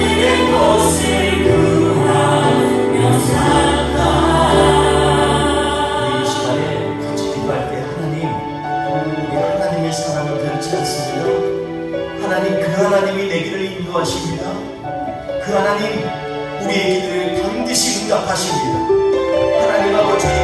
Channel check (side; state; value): both; identical; correlation 1.00